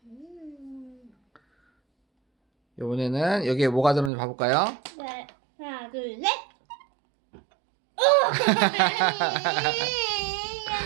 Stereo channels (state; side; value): drops out; left; at 4.1 s